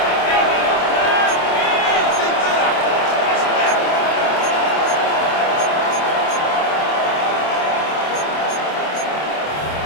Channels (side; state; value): right; late; 27 ms